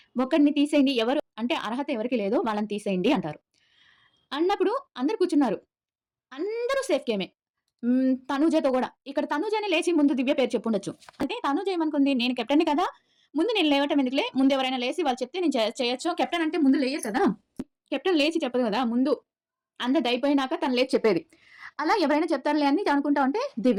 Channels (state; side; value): identical; both; correlation 1.00